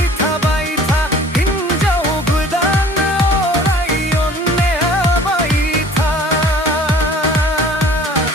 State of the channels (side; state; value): both; normal; correlation 0.49